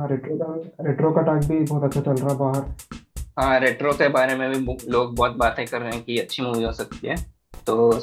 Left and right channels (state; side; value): identical; both; correlation 1.00